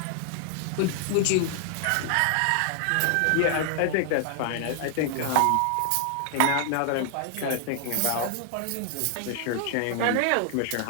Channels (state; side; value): different; both; correlation 0.00